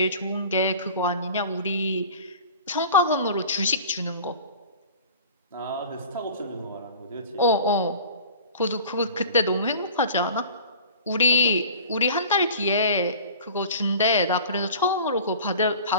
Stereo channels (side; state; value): both; inverted; correlation -0.42